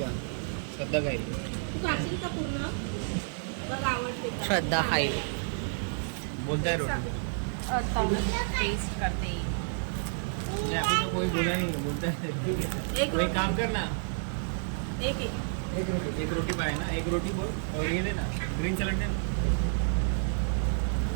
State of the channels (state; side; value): silent; left; digital silence